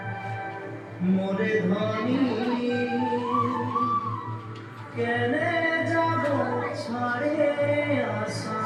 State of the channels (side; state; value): both; identical; correlation 1.00